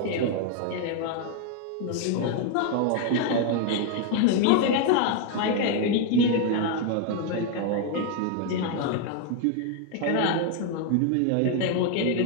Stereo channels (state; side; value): different; both; correlation 0.01